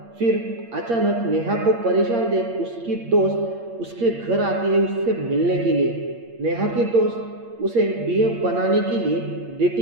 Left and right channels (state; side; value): late; left; 8.6 ms